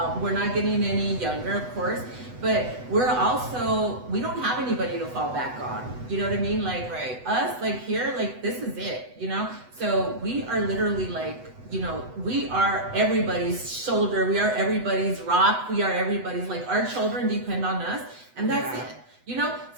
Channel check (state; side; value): late; left; 8.0 ms